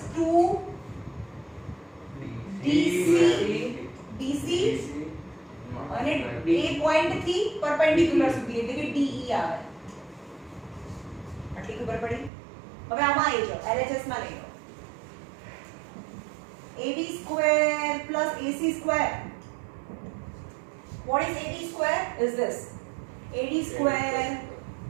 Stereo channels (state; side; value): drops out; left; at 12.3 s